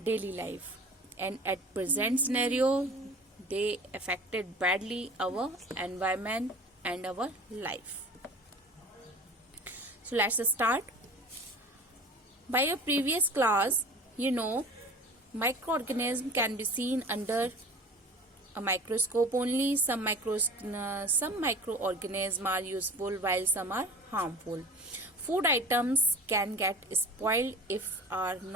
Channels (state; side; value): normal; both; correlation 0.40